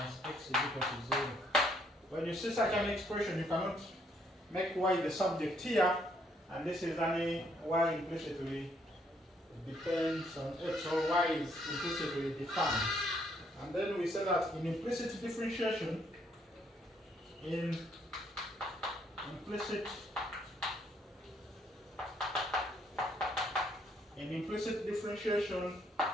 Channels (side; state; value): both; normal; correlation 0.69